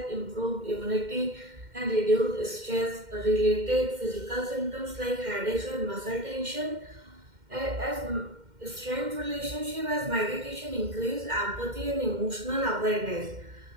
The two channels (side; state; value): left; late; 2.1 ms